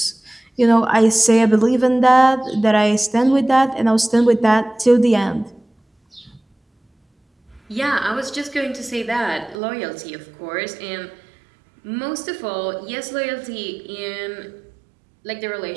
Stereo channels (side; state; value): left; drops out; at 9.6 s